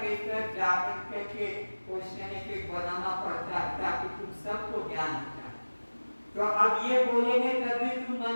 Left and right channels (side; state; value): both; inverted; correlation -1.00